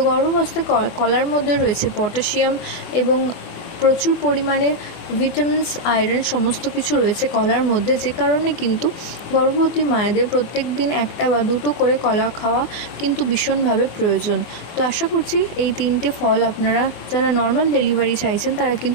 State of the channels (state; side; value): late; right; 24 ms